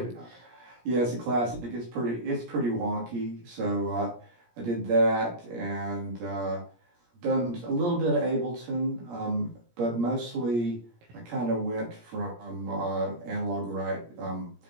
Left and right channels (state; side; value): late; left; 17 ms